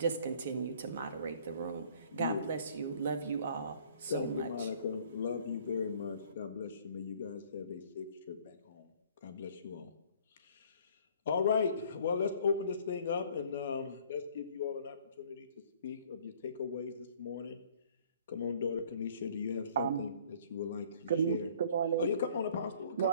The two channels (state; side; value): inverted; both; correlation -0.56